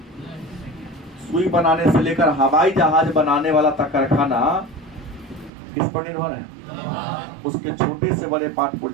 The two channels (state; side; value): drops out; left; at 5.5 s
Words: सुई बनाने से लेकर हवाई जहाज बनाने वाला तक कारखाना किस पर निर्भर है? उसके छोटे से बड़े पार्ट